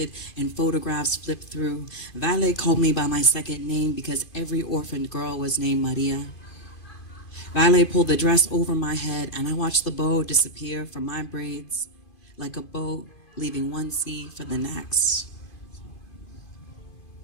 and photographs flipped through, Vale called me by my second name because every orphaned girl was named Maria. Vale pulled the dress over my head, and I watched the bow disappear from my braids like a boat leaving one sea for the next.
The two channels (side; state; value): right; late; 2.5 ms